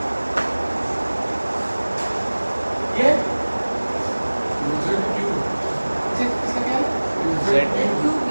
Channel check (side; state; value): both; inverted; correlation -1.00